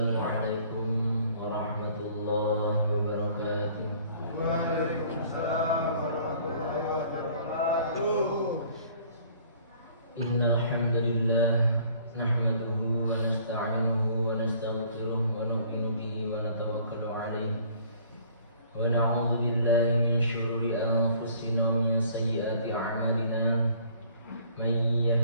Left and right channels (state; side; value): inverted; both; correlation -0.56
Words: warahmatullahi wabarakatuh. Waalaikumsalam warahmatullahi wabarakatuh. Innal hamdalillah nahmaduhu wa nasta'inuhu wa nastaghfiruh wa nu'minu bihi wa natawakkalu 'alaihi wa na'udzu billahi min shururi anfusina wa min sayyiati a'malina. Man